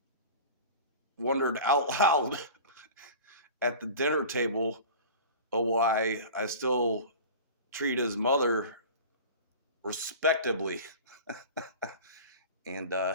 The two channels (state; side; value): inverted; both; correlation -0.37